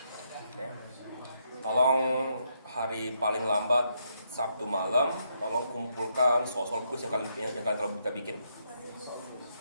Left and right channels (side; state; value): both; inverted; correlation -0.77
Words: Tolong hari paling lambat Sabtu malam, tolong kumpulkan soal-soal kuis yang kalian telah kita bikin.